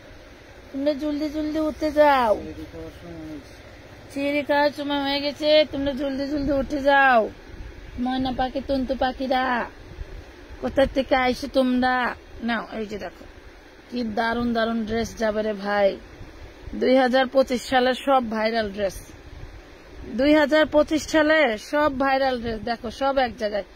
তোমরা জলদি জলদি উঠে যাও, চিড়ি খাওয়ার সময় হয়ে গেছে, তোমরা জলদি জলদি উঠে যাও। ময়না পাখি, টুনটু পাখিরা কোথা থেকে আইসো তোমরা? নাও এই যে দেখো কি দারুন দারুন ড্রেস যাবে রে ভাই। 2025 সালের সব ভাইরাল ড্রেস, 2025 সালে সব ভাইরাল ড্রেস দেখো, সব এক জায়গায়।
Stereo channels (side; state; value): both; identical; correlation 1.00